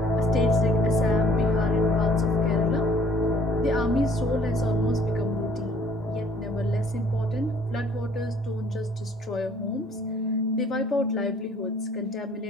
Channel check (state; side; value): normal; both; correlation 0.58